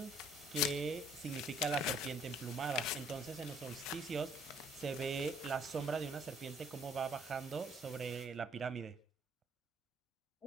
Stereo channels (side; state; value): both; normal; correlation 0.63